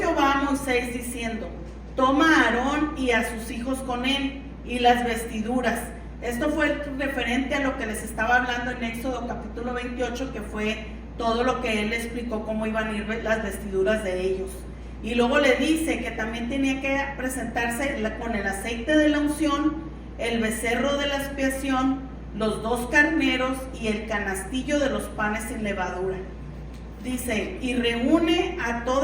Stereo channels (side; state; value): both; identical; correlation 1.00